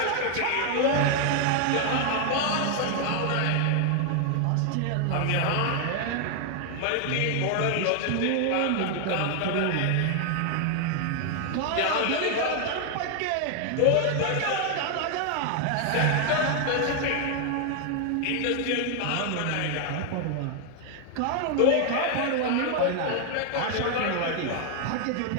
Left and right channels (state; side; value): different; both; correlation 0.00